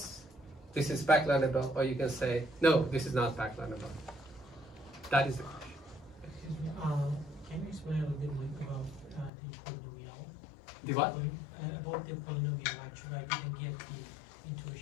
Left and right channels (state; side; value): drops out; right; at 9.3 s